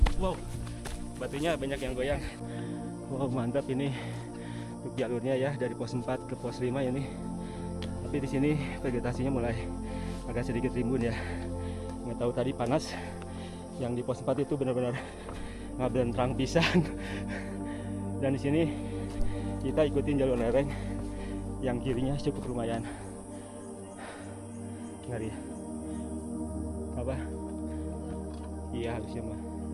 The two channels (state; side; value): identical; both; correlation 1.00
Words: Wow, batunya banyak yang goyang. Wow, mantap ini untuk jalurnya ya, dari pos 4 ke pos 5 ini. Tapi di sini vegetasinya mulai agak sedikit rimbun ya. Nggak tahu tadi panas. Yang di pos 4 itu benar-benar ngaben terang pisan. Dan di sini kita ikutin jalur lereng yang kirinya cukup lumayan. Ngeri. Apa? Iya harusnya mah.